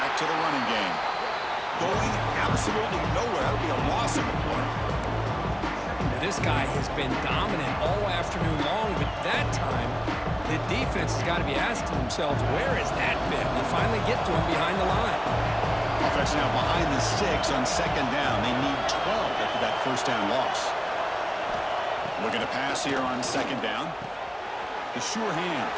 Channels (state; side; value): identical; both; correlation 1.00